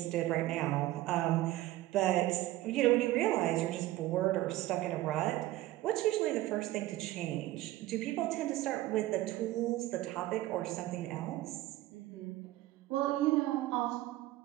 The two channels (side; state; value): left; quieter; 16.4 dB